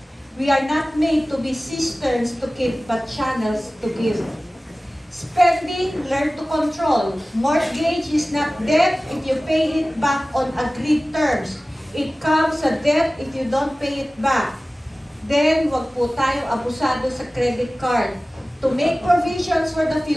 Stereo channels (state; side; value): normal; both; correlation 0.97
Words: We are not made to be cisterns to keep, but channels to give. Spending, learn to control. Mortgage is not debt if you pay it back on agreed terms. It comes a debt if you don't pay it back. Then, wag po tayo abusado sa credit card. To make provisions for the